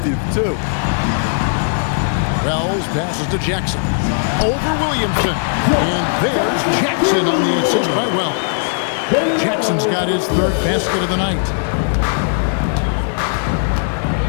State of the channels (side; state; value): right; silent; digital silence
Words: too. Wells passes to Jackson. Over Williamson. And there's Jackson on the assist by Wells. Jackson's got his third basket of the night.